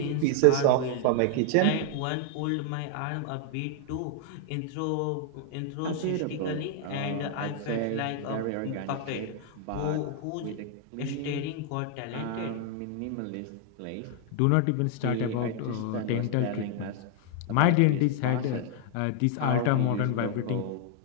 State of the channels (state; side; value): different; both; correlation 0.00